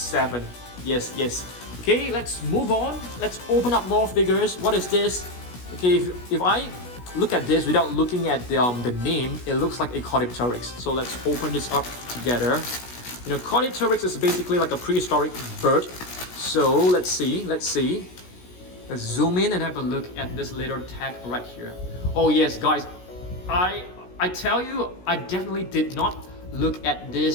Yes, yes. Okay, let's move on. Let's open up more figures. What is this? Okay, if I look at this without looking at the name, it looks like a Cardiothorax. So let's open this up together. You know, Cardiothorax is basically like a prehistoric bird. So let's see. Let's zoom in and have a look at this little tag right here. Oh yes, guys, I tell you, I definitely did not look at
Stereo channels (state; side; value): late; right; 16 ms